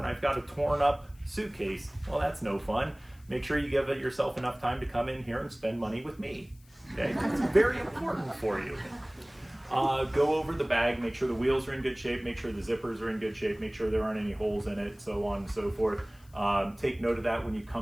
I've got a torn up suitcase. Well, that's no fun. Make sure you give yourself enough time to come in here and spend money with me. Okay, it's very important for you. Go over the bag, make sure the wheels are in good shape, make sure the zippers are in good shape, make sure there aren't any holes in it, so on and so forth. Take note of that when you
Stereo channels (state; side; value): noise; left; hiss, 29 dB below the sound